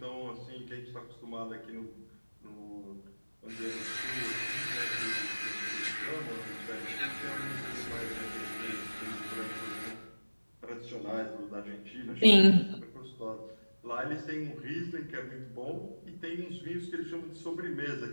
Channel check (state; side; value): inverted; both; correlation -1.00